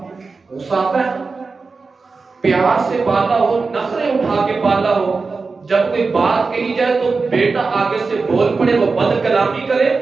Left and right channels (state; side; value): quieter; left; 4.3 dB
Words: غصہ آتا ہے۔ پیار سے پالا ہو، نخرے اٹھا کے پالا ہو، جب کوئی بات کہی جائے تو بیٹا آگے سے بول پڑے، وہ بد کلامی کرے